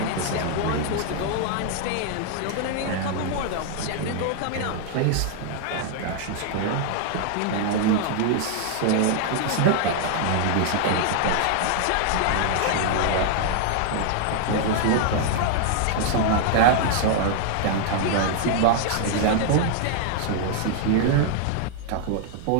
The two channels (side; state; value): both; different; correlation 0.00